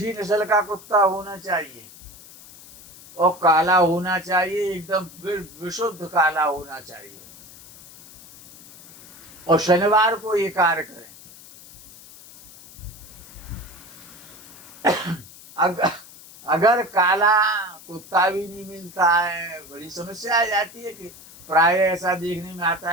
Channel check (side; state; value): left; noise; hiss, 20 dB below the sound